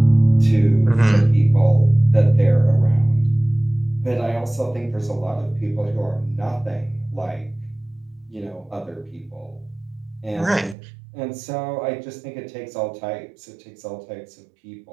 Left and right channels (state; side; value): drops out; left; at 10.8 s